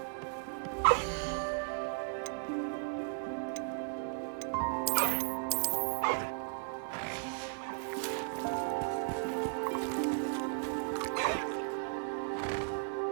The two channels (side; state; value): left; silent; digital silence